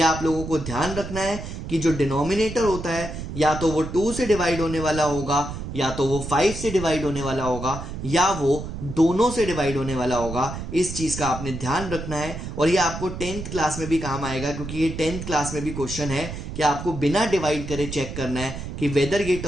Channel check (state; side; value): noise; right; rumble, 8 dB below the sound